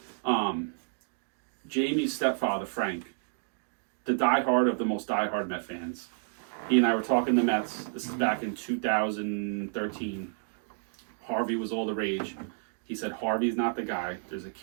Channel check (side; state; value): left; silent; digital silence